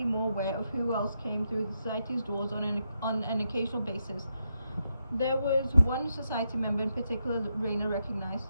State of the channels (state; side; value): inverted; both; correlation -0.83